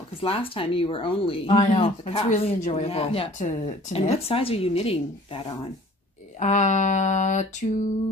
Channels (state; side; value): normal; both; correlation 0.50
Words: because last time you were only... I know. It's really enjoyable to knit. And what size are you knitting that on?